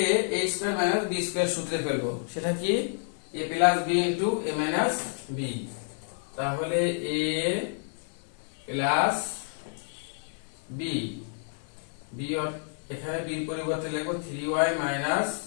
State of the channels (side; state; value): right; silent; digital silence